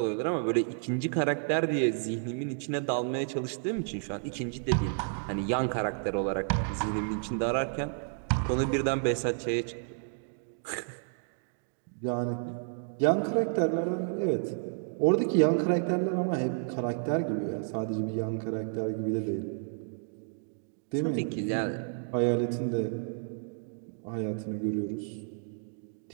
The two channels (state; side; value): silent; left; digital silence